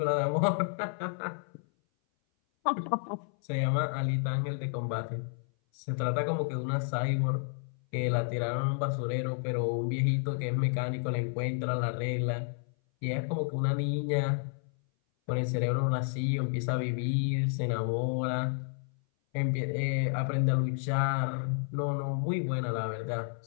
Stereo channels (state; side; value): silent; right; 57 dB below the other